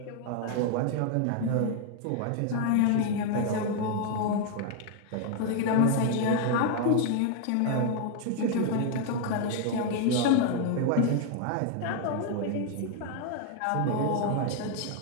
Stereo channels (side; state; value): both; different; correlation 0.01